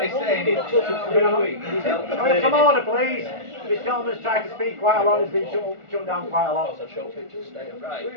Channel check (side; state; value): left; late; 1.4 ms